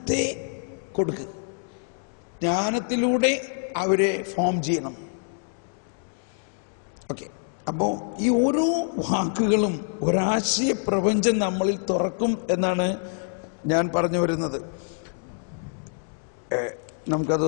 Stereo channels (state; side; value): silent; right; 59 dB below the other